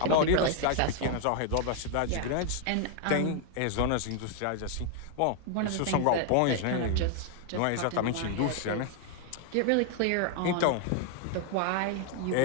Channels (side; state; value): both; different; correlation 0.00